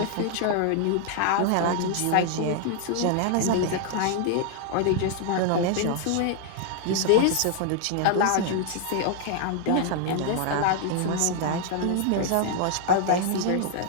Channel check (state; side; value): different; both; correlation 0.00